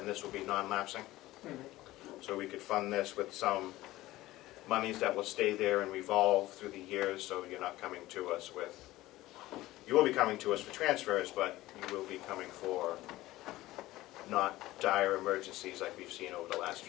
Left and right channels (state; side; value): quieter; right; 17.2 dB